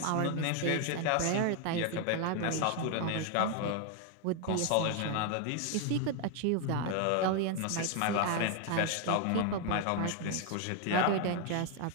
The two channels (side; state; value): both; different; correlation 0.01